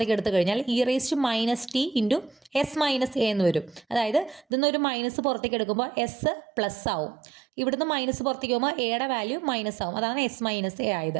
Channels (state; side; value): drops out; left; at 4.5 s